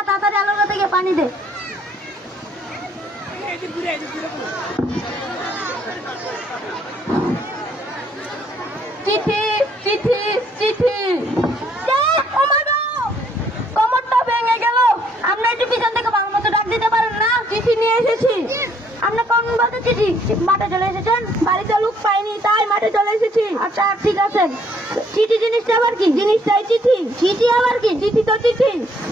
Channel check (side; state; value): both; normal; correlation 0.66